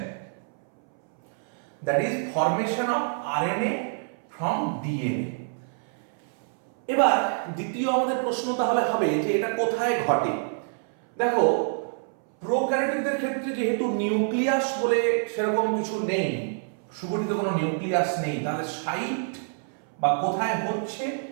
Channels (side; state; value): left; silent; 60 dB below the other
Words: that is formation of RNA from DNA. এবার দ্বিতীয় আমাদের প্রশ্ন তাহলে হবে যে এটা কোথায় ঘটে। দেখো, প্রোক্যারিওটদের ক্ষেত্রে যেহেতু নিউক্লিয়াস বলে সেরকম কিছু নেই, সুগঠিত কোনো নিউক্লিয়াস নেই, তাহলে সাইট বা কোথায় হচ্ছে